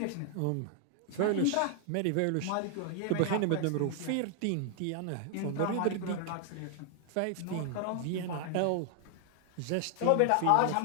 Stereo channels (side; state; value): both; different; correlation 0.00